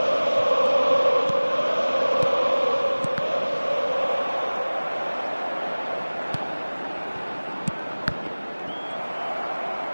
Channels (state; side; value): inverted; both; correlation -1.00